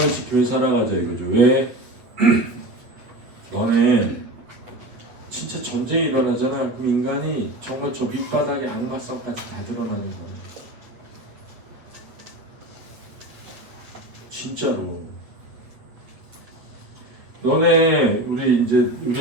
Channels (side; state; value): left; late; 8.6 ms